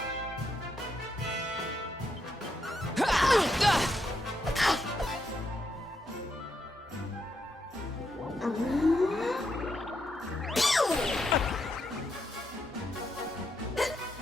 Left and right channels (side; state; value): both; normal; correlation 0.80